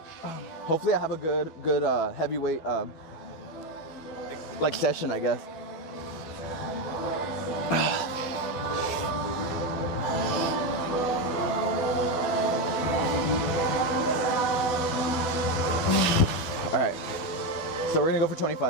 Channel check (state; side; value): late; right; 12 ms